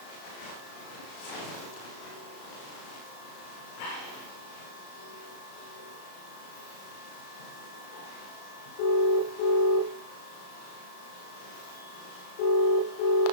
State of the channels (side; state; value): right; late; 34 ms